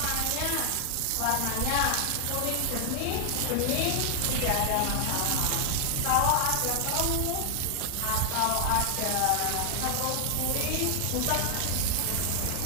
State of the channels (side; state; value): both; different; correlation 0.00